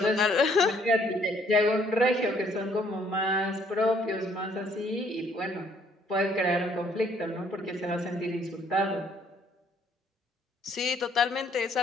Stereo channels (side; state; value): both; normal; correlation 0.64